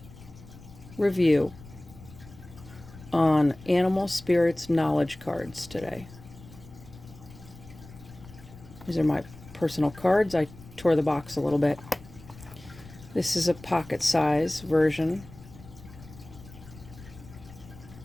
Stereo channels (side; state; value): left; noise; rumble, 19 dB below the sound